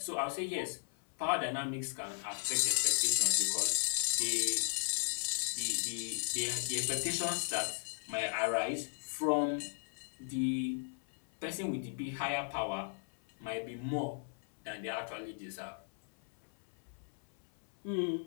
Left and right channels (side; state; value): right; silent; 53 dB below the other